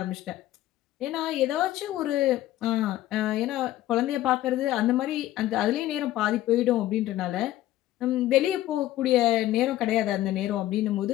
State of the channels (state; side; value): quieter; right; 14.4 dB